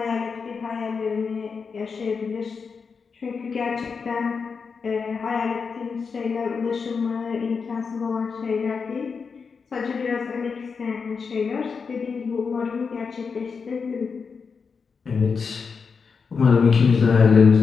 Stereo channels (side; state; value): right; quieter; 5.4 dB